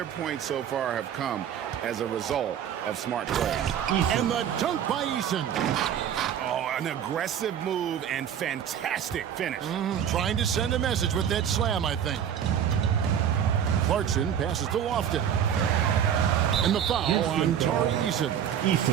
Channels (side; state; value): left; quieter; 9.1 dB